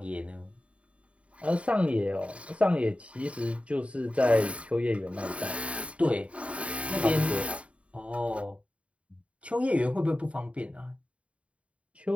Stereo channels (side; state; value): left; late; 0.064 ms